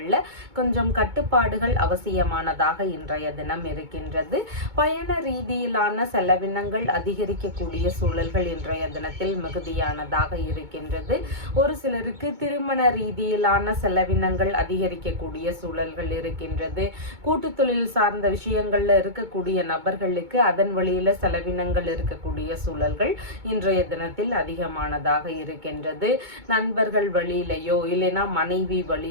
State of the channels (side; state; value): left; late; 2.2 ms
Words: கொஞ்சம் கட்டுப்பாடுகள் அவசியமானதாக இன்றைய தினம் இருக்கின்றது. பயண ரீதியிலான செலவினங்கள் அதிகரிக்க அதிகரிக்கக்கூடிய சூழல்கள் இன்றைய தினத்தில் மிகுதியானதாக இருக்கின்றது. ஒரு சிலருக்கு திருமண ரீதியிலான செலவினங்கள் அதிகரிக்கக்கூடிய சூழல்கள் இருக்கின்றது. கூட்டு தொழில் சார்ந்த விஷயங்கள்ல இருக்கக்கூடிய நபர்களுக்கு அதன் வழியில செலவினங்கள் இருக்கக்கூடிய சூழல்கள் இன்றைய தினத்தில் அதிகமானதாக இருக்கின்றது. நண்பர்கள் வழியிலையோ இல்லைன்னா மனைவி